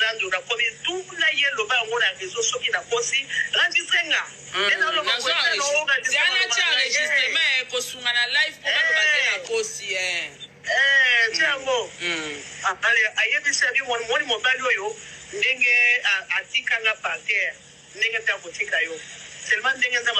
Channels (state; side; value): identical; both; correlation 1.00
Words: na komi tula yelo ba ngona rezo soki na kosi randisenga ena lo ko jana cha registrement ko sunga na live ko ba na kosi tiamo ale ayebisa bi woni mobile oyo ndenge atikanga parterre ndenge ta kotika yo seulement ndenge za